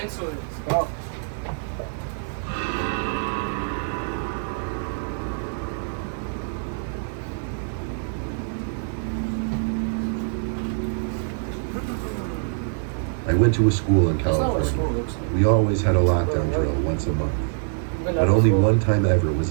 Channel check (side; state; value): left; silent; 62 dB below the other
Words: it. Let's go. I went to a school in California. We always had a lockdown drill once a month. But only one time ever was